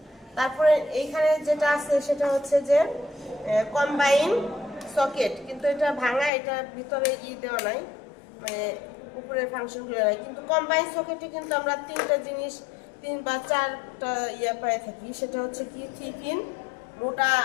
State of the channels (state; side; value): drops out; right; at 6.3 s